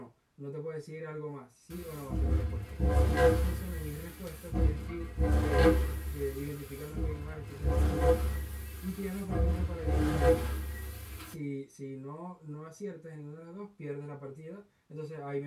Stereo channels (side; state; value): both; identical; correlation 1.00